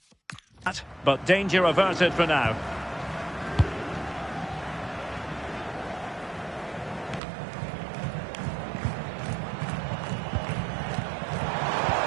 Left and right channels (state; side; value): drops out; left; at 7.2 s